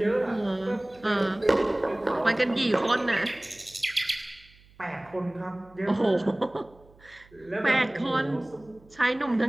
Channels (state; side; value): noise; right; hum, 27 dB below the sound